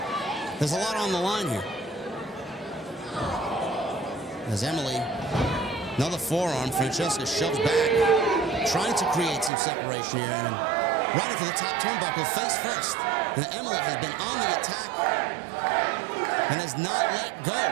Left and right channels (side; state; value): left; drops out; at 9.5 s